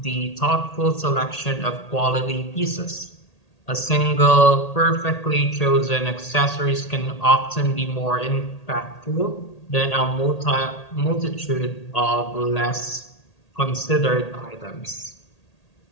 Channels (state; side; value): late; right; 1.8 ms